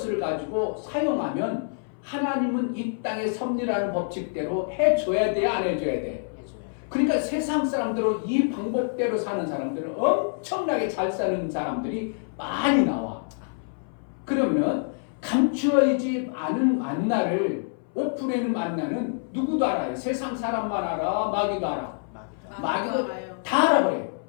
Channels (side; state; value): right; silent; 59 dB below the other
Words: 가지고 사용하면 하나님은 이 땅의 섭리라는 법칙대로 해줘야 돼, 안 해줘야 돼? 해줘요. 그러니까 세상 사람들은 이 방법대로 사는 사람들은 엄청나게 잘 사는 사람들이 많이 나와. 그러면 감추어지지 않은 만나를 오픈해는 만나는 누구도 알아요. 세상 사람만 알아, 마귀도 알아. 마귀도 알아요. 다 알아버려요.